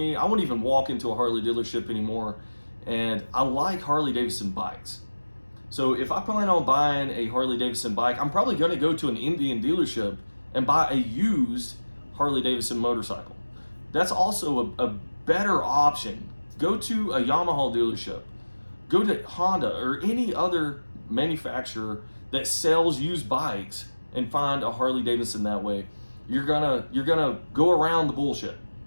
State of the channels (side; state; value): both; inverted; correlation -1.00